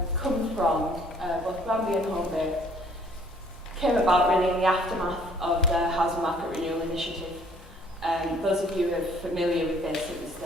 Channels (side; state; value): both; normal; correlation 0.59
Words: from, both Granby and Holbait, came about really in the aftermath of the Housing Market Renewal Initiative. Those of you who are familiar with this, it was